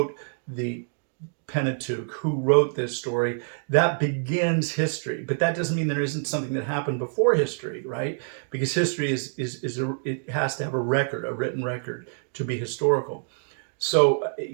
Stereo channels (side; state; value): left; silent; digital silence